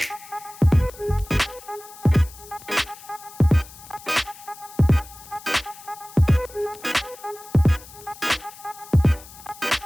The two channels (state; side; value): noise; left; hiss, 19 dB below the sound